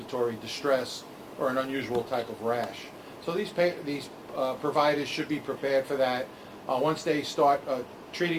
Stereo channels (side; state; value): both; identical; correlation 1.00